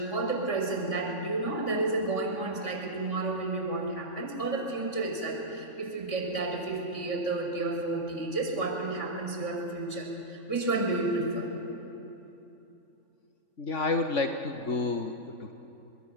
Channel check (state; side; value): late; right; 3.5 ms